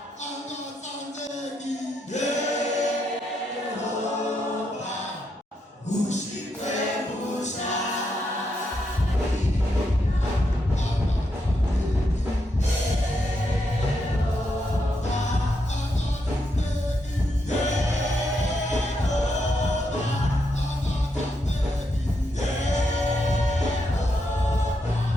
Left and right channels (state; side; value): normal; both; correlation 0.81